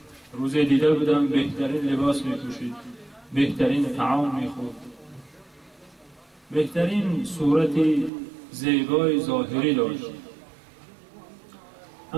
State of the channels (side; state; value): left; drops out; at 8.1 s